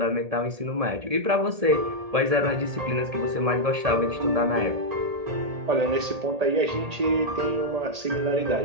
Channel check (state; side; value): late; left; 1.8 ms